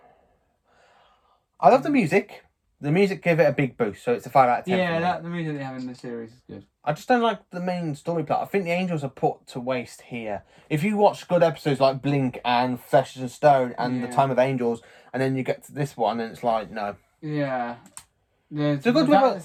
I love the music. The music gave it a big boost, so it's a 5 out of 10. Yeah, the music they have in the series is good. I just don't like the main story plot. I think the Angels are put to waste here. If you watch good episodes like Blink and Flesh and Stone and The Time of Angels, and then you get to this one and it's like, no. Yeah. The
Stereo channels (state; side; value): identical; both; correlation 1.00